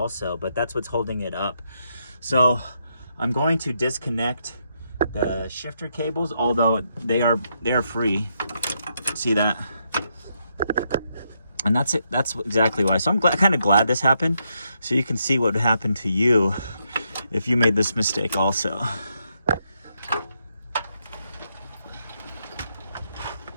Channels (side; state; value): both; inverted; correlation -0.79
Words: but that's what's holding it up. So I'm going to disconnect the shifter cables, although they are free. See that? And that's it. That's exactly why. So I'm kind of glad this happened, so you can see what would happen to you if you made this mistake also.